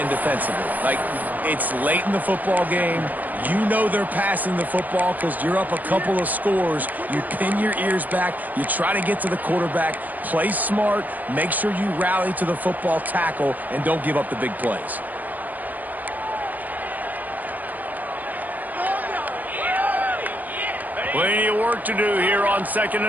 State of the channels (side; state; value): left; late; 0.082 ms